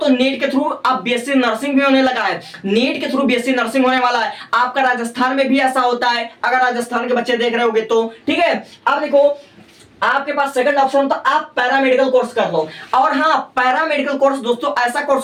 नीट के थ्रू अब बीएससी नर्सिंग भी होने लगा है, नीट के थ्रू बीएससी नर्सिंग होने वाला है। आपका राजस्थान में भी ऐसा होता है, अगर राजस्थान के बच्चे देख रहे होगे तो। ठीक है, अब देखो आपके पास सेकंड ऑप्शन तो आप पैरामेडिकल कोर्स कर लो। और हाँ, पैरामेडिकल कोर्स दोस्तों ऐसा कोर्स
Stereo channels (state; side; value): identical; both; correlation 1.00